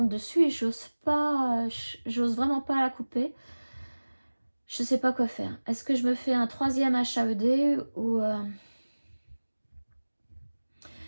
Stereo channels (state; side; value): inverted; both; correlation -1.00